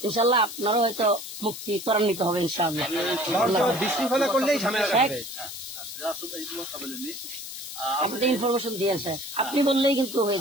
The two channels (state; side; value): noise; left; hiss, 10 dB below the sound